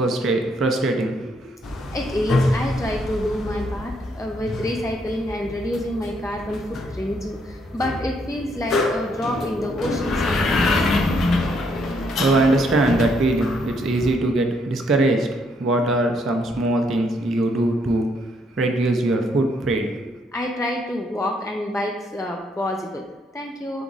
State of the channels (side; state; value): both; normal; correlation 0.72